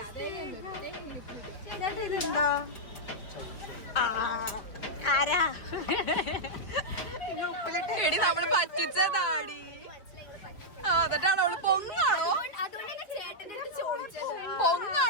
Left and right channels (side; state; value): right; late; 4.6 ms